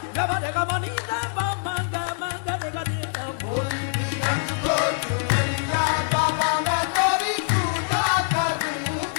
ग म रे ग म नी दा प म ग म ग रे ग रे दा बोली भी रंग को चुनरिया बाबा मैं तेरी पूजा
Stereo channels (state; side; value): silent; right; digital silence